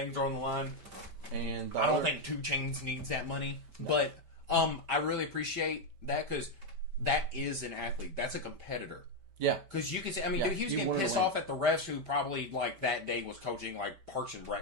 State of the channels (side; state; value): left; late; 5.1 ms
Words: are on the line, and I don't think 2 Chainz needs that money, but I really appreciate that because that is an athlete, that's a competitor. Yeah, because you can say, I mean, dude, he was getting pissed off at the refs who probably like that day was coaching like Parks and